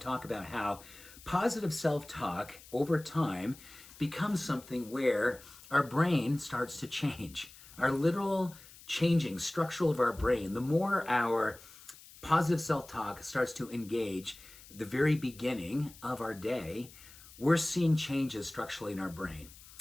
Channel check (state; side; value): noise; left; hiss, 20 dB below the sound